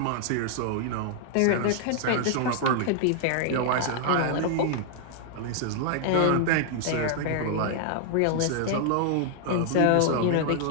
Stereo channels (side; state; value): both; different; correlation 0.00